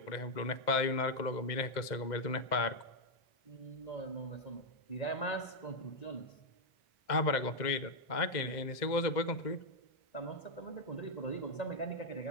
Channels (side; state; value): right; late; 2.0 ms